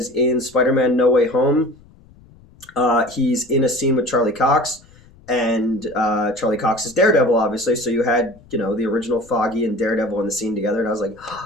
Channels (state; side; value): noise; left; rumble, 26 dB below the sound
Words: in Spider-Man No Way Home, he's in a scene with Charlie Cox, and Charlie Cox is Daredevil, obviously, so you had, the original Foggy and Daredevil in the scene together, and I was like,